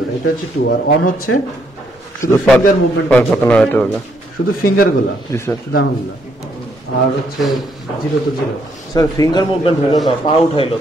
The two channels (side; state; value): both; normal; correlation 0.72